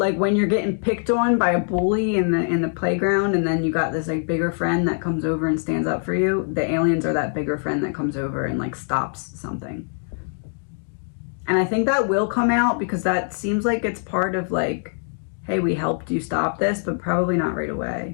you're getting picked on by a bully in the playground, and then you got this like bigger friend that comes over and stands up for you. The aliens are that bigger friend that comes over and like stops something. And I think that will come out because that seems like it's part of like, hey, we helped you stop this, but probably not right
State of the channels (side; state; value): right; silent; 61 dB below the other